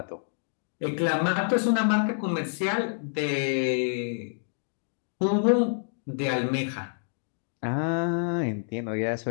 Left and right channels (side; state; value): right; silent; digital silence